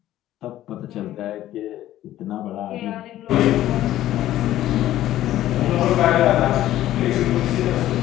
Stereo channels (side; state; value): right; quieter; 13.7 dB